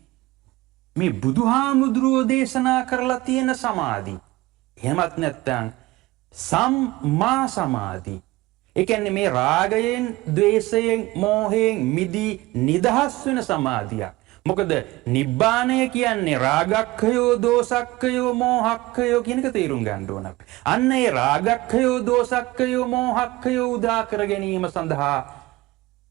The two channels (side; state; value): left; quieter; 19.6 dB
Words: මේ බුදුහාමුදුරුවෝ දේශනා කරලා තියෙන සමාධි. එහෙමත් නැත්නම් සම්මා සමාධි. ඒ කියන්නේ මේ රාගයෙන්, ද්වේෂයෙන්, මෝහයෙන් මිදී නිදහස් වෙන සමාධියක්. මොකද නිබ්බාණය කියන්නේ රාගක්ඛයෝ, දෝසක්ඛයෝ, මෝහක්ඛයෝ කියන එක තේරුම් ගන්න ඕන අපි. අන්න ඒ රාගක්ඛයෝ, දෝසක්ඛයෝ, මෝහක්ඛයෝ උදා කර ගැනීම සඳහා